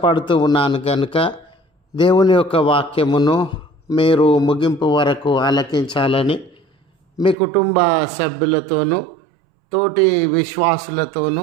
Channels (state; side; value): drops out; left; at 7.4 s